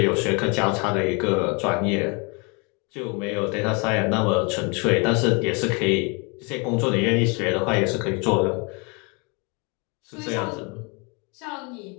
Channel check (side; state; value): right; quieter; 31.6 dB